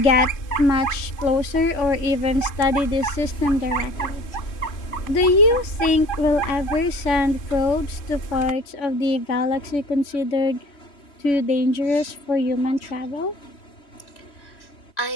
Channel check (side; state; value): right; late; 3.5 ms